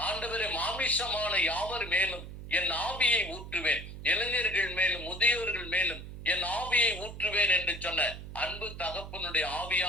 ஆண்டவரை மாமிசமான யாவர் மேலும் என் ஆவியை ஊற்றுவேன், இளைஞர்கள் மேலும் முதியோர்கள் மேலும் என் ஆவியை ஊற்றுவேன் என்று சொன்ன அன்பு தகப்பனுடைய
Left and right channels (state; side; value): noise; right; hum, 11 dB below the sound